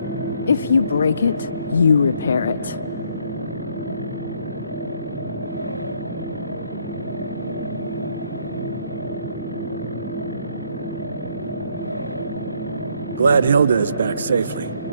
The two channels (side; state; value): both; inverted; correlation -0.67